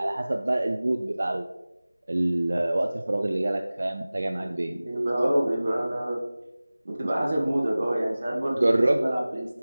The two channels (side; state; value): both; inverted; correlation -0.98